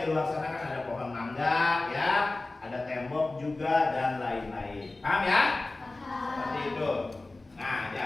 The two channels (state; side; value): quieter; right; 3.1 dB